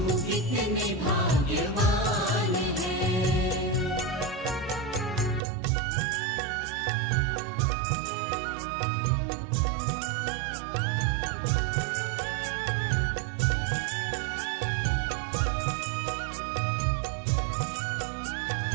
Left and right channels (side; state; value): left; drops out; at 5.4 s